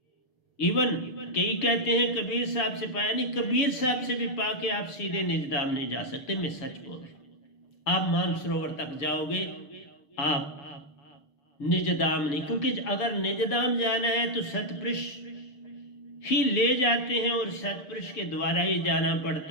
इवन कई कहते हैं कबीर साहब से पाया, नहीं, कबीर साहब से भी पाके आप सीधे निजधाम नहीं जा सकते। मैं सच बोल रहा हूं, आप मानसरोवर तक जाओगे, आप निजधाम नहीं। क्योंकि अगर निजधाम जाना है तो सतपुरुष ही ले जाते हैं और सतपुरुष के द्वारा ही जाना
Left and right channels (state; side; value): late; right; 7.0 ms